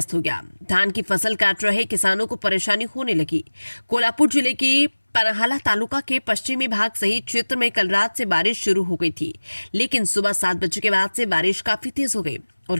हो गया। धान की फसल काट रहे किसानों को परेशानी होने लगी। कोल्हापुर जिले के पन्हाळा तालुका के पश्चिमी भाग सहित क्षेत्र में कल रात से बारिश शुरू हो गई थी, लेकिन सुबह 7 बजे के बाद से बारिश काफी तेज हो गई और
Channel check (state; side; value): inverted; both; correlation -1.00